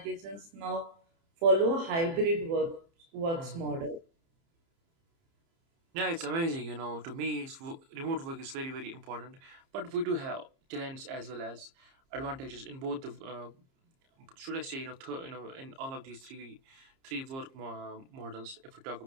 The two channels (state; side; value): late; left; 30 ms